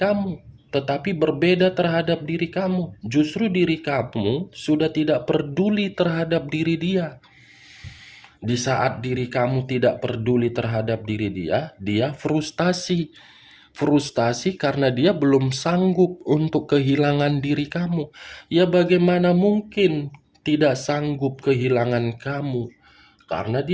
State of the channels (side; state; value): both; identical; correlation 1.00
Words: tetapi berbeda terhadap diri kamu. Justru diri kamu sudah tidak peduli terhadap diri dia. Di saat diri kamu tidak peduli terhadap diri dia, dia frustasi. Frustasi karena dia belum sanggup untuk kehilangan diri kamu. Ya bagaimana mungkin tidak sanggup kehilangan kamu? Karena